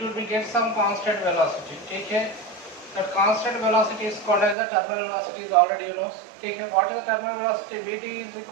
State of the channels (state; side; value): drops out; left; at 4.5 s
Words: will be get some constant velocity, ठीक है। That constant velocity is called as the terminal velocity, is already you know. Take what is the terminal velocity? Vt is